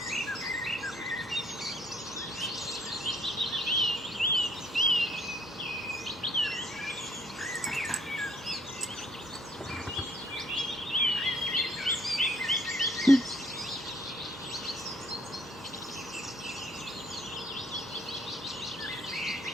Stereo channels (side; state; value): both; normal; correlation 0.63